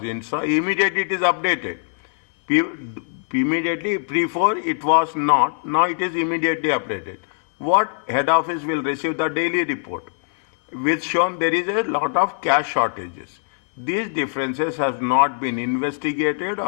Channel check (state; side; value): silent; right; digital silence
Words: installed? Immediately it is updated. Immediately before it was not. Now it is immediately updated. What head office will receive the daily report, which shown there is a lot of cash shortages. These differences have not been investigated